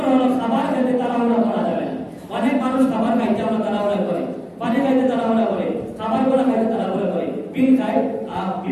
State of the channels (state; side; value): identical; both; correlation 1.00